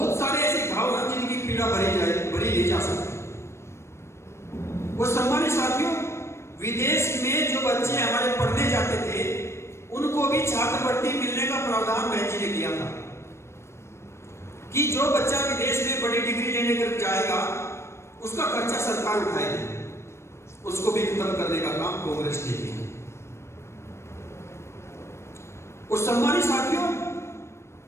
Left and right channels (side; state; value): right; late; 0.13 ms